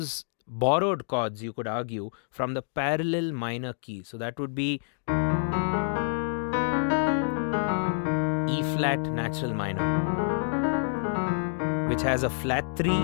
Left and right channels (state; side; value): silent; right; digital silence